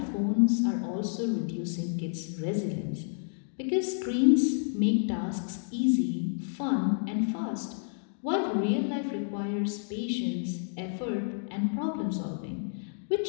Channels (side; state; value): right; silent; digital silence